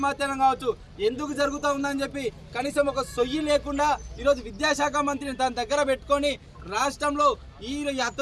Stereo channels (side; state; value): both; identical; correlation 1.00